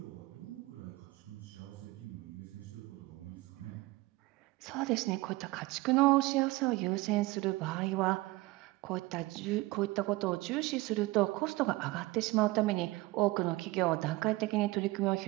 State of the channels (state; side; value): quieter; left; 20.7 dB